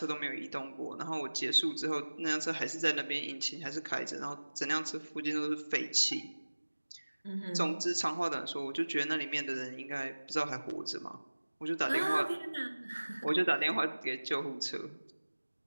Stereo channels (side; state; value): both; inverted; correlation -1.00